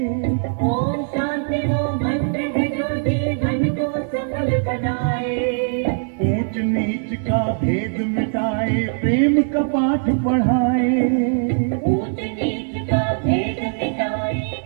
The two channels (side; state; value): left; silent; 63 dB below the other